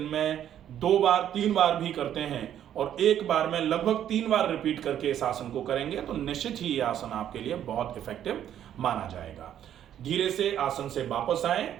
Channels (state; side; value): quieter; left; 10.5 dB